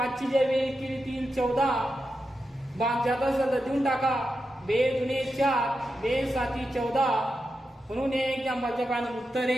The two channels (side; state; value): both; normal; correlation 0.89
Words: ची जर बेरीज केली 3 14. बाग जात असेल तर देऊन टाका. 2 दुने 4, 2 7 14. म्हणून हे एक्झाम्पलचे फायनल उत्तर